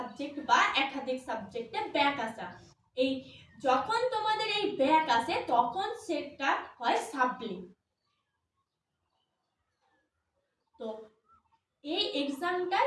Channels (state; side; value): identical; both; correlation 1.00